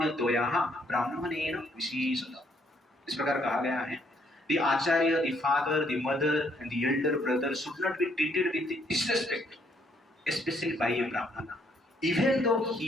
ब्राह्मणेन विशेषतः। इस प्रकार कहा गया है, the acharya, the father, the mother and the elder brother should not be treated with disrespect, especially by a brahmana, even though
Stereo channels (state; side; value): normal; both; correlation 0.69